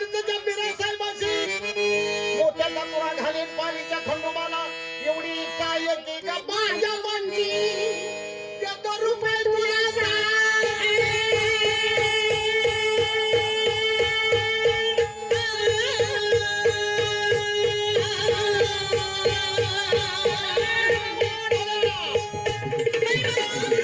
बिरा साहेबाशी मोत्याचा तुरा घालीन पाणीच्या खंडोबाला एवढी इच्छा आहे की का माझ्या मनची देतो रुपये तुला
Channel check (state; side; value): identical; both; correlation 1.00